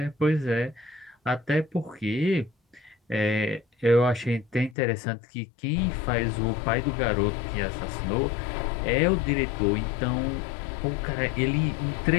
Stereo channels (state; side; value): drops out; right; at 4.8 s